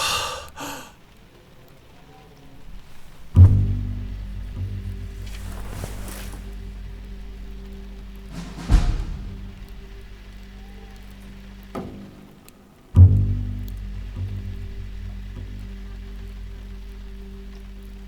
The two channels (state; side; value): identical; both; correlation 1.00